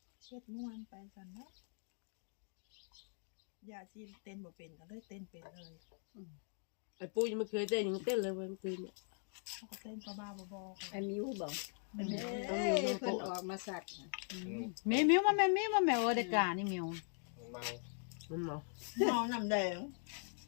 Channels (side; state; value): right; silent; 50 dB below the other